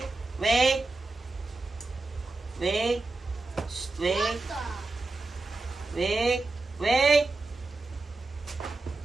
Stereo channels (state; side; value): quieter; left; 3.3 dB